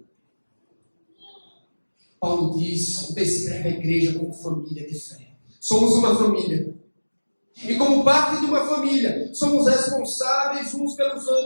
Paulo descreve a igreja como família de fé. Somos uma família. E como parte de uma família, somos responsáveis uns pelos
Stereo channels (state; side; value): inverted; both; correlation -1.00